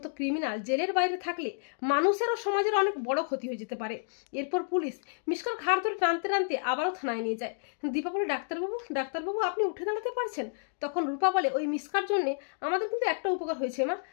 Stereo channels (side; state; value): right; silent; digital silence